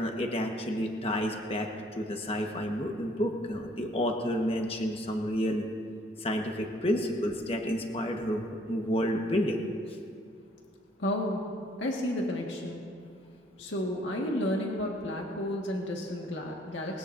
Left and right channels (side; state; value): both; normal; correlation 0.62